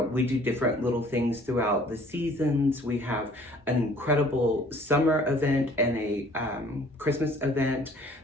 We do different little things throughout the seasons. We have an incredible summer event and a Christmas event.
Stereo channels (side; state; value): both; normal; correlation 0.54